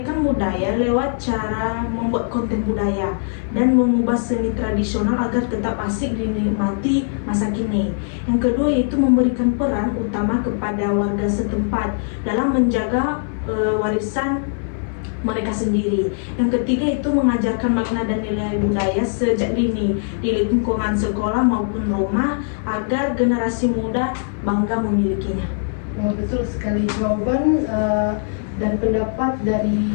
budaya lewat cara membuat konten budaya dan mengubah seni tradisional agar tetap asik dinikmati masa kini. Yang kedua, yaitu memberikan peran utama kepada warga setempat dalam menjaga warisan mereka sendiri. Yang ketiga, itu mengajarkan makna dan nilai budaya sejak dini di lingkungan sekolah maupun rumah agar generasi muda bangga memilikinya. Nah, betul sekali, jawaban dan pendapat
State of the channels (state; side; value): silent; right; digital silence